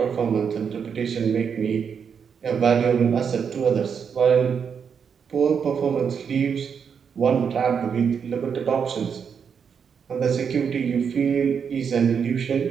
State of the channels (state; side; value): quieter; left; 6.8 dB